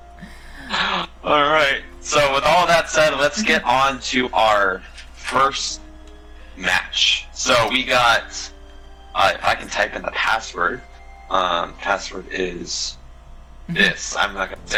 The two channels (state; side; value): identical; both; correlation 1.00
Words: Alright, so with all that said, let's get on to our first match. So we got, if I can type in the password, password is this. I'm not going to say